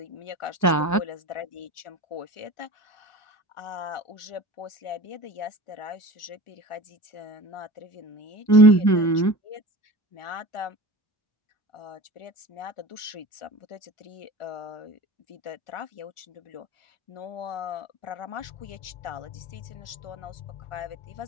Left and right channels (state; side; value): late; right; 1.4 ms